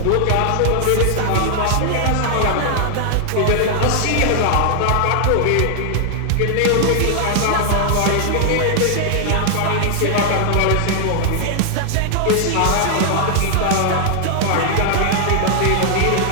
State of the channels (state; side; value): different; both; correlation 0.00